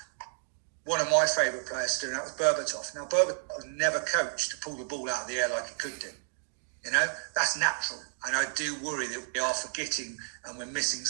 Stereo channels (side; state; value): left; silent; digital silence